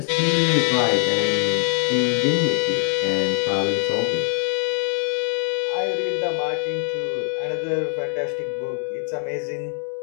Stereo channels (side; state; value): right; silent; 57 dB below the other